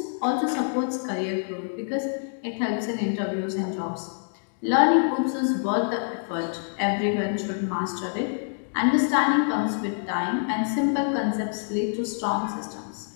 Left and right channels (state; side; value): silent; right; digital silence